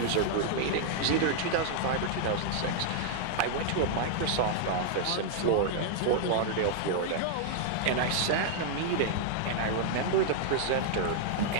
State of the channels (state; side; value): different; both; correlation -0.01